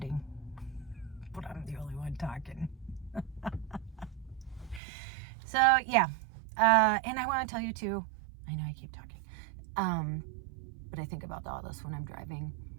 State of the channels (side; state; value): left; drops out; at 4.8 s